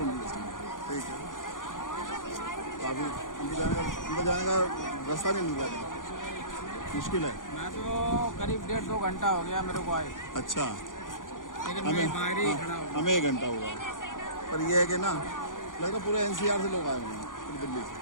से, ठीक है। काफी अंदर जाने का रास्ता नहीं मिल रहा, मुश्किल है। मैं तो करीब 1.5-2 घंटा हो गया मेरे को आए। अच्छा, लेकिन मैं बाहर ही खड़ा हूँ। हमें 1 घंटा हुआ, पर यह है कि ना लगता पूरे एनसीआर से लोग आए हुए हैं, पूरी दिल्ली से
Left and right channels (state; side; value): late; right; 0.88 ms